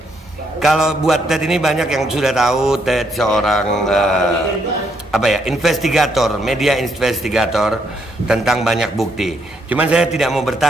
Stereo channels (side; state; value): both; normal; correlation 0.74